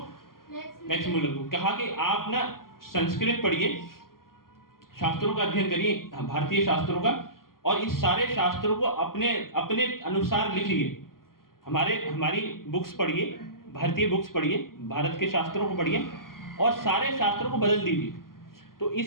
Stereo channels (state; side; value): late; right; 0.92 ms